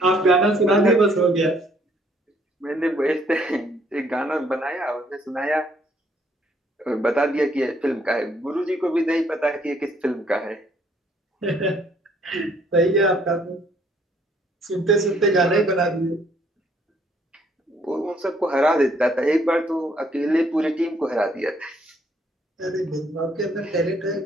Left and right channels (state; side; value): normal; both; correlation 0.66